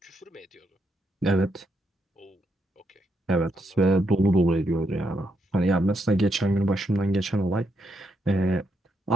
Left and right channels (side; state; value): both; normal; correlation 0.79